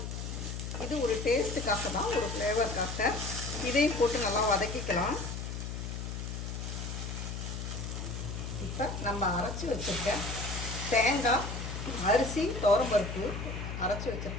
இது ஒரு டேஸ்ட்டுக்காக தான், ஒரு ஃப்ளேவருக்காக, இதையும் போட்டு நல்லா வதக்கிக்கலாம். இப்போ நம்ம அரைச்சி வச்சுருக்க தேங்காய், அரிசி, துவரம்பருப்பு அரைச்சி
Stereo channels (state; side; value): noise; left; hum, 5 dB below the sound